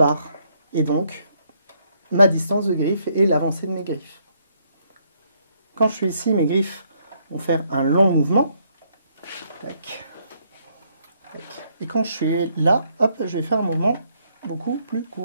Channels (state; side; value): inverted; both; correlation -0.71